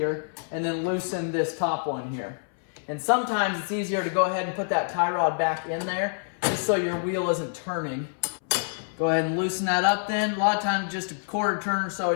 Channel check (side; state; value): right; silent; 60 dB below the other